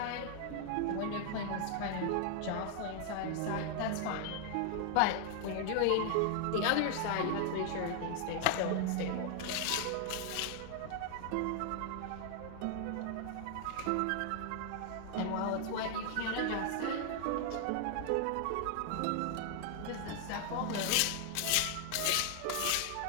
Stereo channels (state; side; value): different; both; correlation 0.00